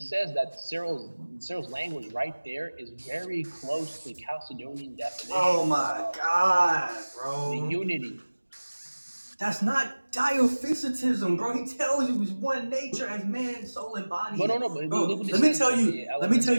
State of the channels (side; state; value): both; inverted; correlation -1.00